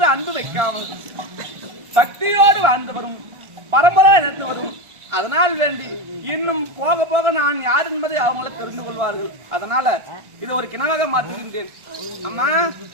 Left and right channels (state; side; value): late; left; 1.5 ms